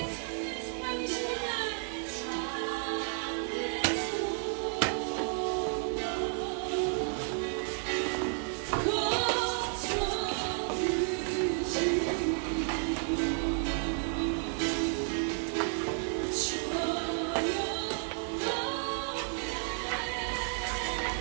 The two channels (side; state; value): left; silent; 56 dB below the other